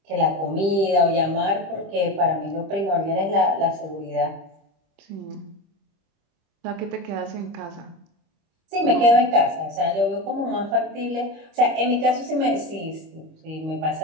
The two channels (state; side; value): late; left; 25 ms